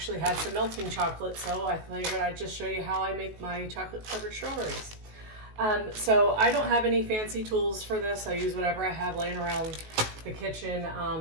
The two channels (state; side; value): late; left; 19 ms